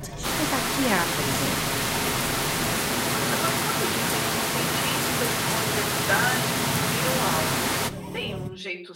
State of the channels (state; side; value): identical; both; correlation 1.00